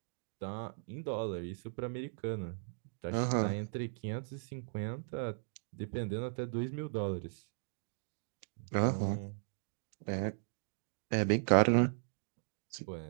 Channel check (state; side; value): silent; left; digital silence